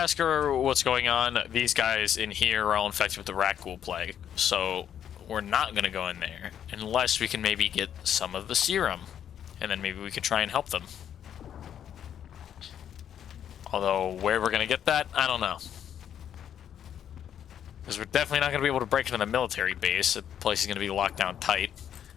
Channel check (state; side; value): quieter; right; 9.5 dB